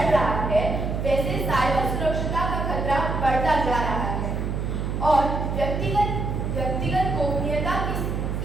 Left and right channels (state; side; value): noise; right; hum, 2 dB below the sound